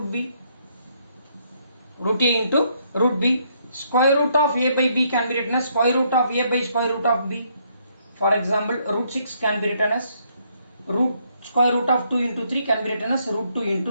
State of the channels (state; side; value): inverted; both; correlation -0.71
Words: B. Root A into root B. Square root of A by B can be written as square root of A by square root of B. For example, root 6 can be written as square root of 2 into 3 can be written as root 2